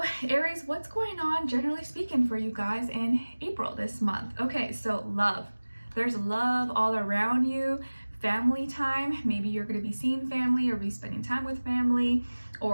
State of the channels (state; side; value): inverted; both; correlation -1.00